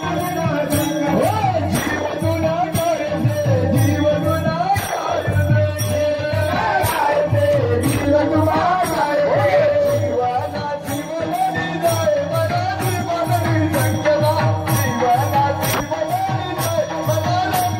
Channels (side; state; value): both; identical; correlation 1.00